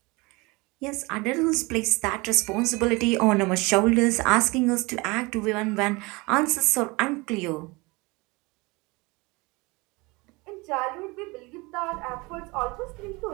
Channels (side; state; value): left; quieter; 25.1 dB